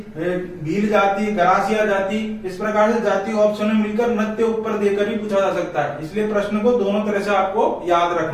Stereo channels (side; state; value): both; identical; correlation 1.00